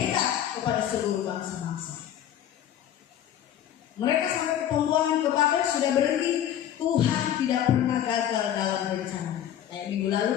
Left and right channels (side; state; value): right; quieter; 10.7 dB